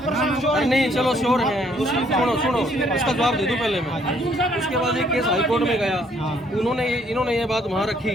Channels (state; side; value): normal; both; correlation 0.66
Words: श्योर अरे नहीं चलो श्योर हैं। सुनो उसका जवाब दे दूं पहले मैं। उसके बाद एक केस हाई कोर्ट में गया, इन्होंने ये बात वहाँ